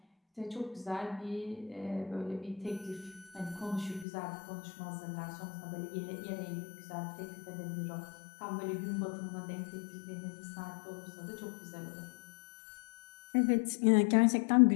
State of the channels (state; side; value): drops out; right; at 4.0 s